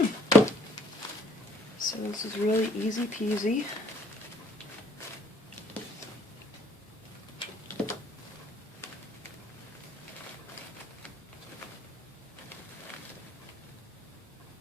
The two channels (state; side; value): normal; both; correlation 0.61